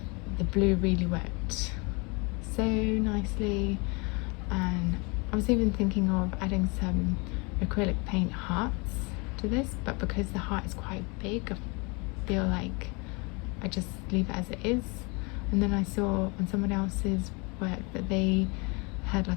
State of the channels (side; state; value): right; quieter; 29.6 dB